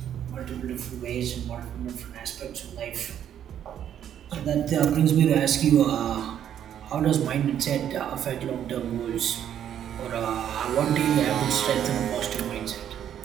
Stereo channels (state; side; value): quieter; left; 9.9 dB